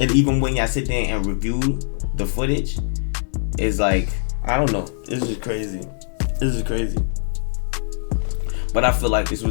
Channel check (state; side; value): silent; right; digital silence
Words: even when y'all sit there and review the footage, it's like I don't know. This is crazy. This is crazy. But I feel like this